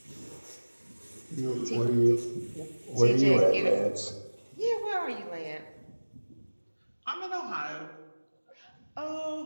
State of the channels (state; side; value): inverted; both; correlation -1.00